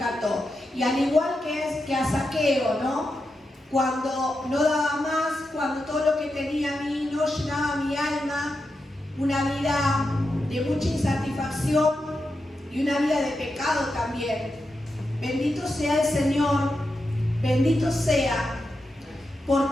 Y al igual que a Zaqueo, ¿no? Cuando no daba más, cuando todo lo que tenía a mí no llenaba mi alma, una vida de mucha insatisfacción y una vida de pecado también. Bendito sea el Señor, bendito sea,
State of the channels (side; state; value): both; normal; correlation 0.88